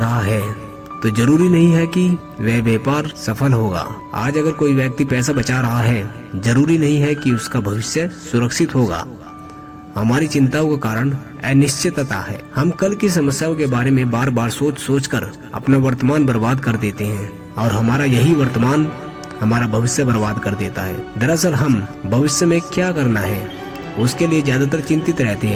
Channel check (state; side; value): identical; both; correlation 1.00